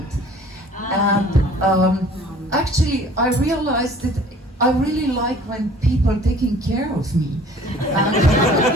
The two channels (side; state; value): both; normal; correlation 0.51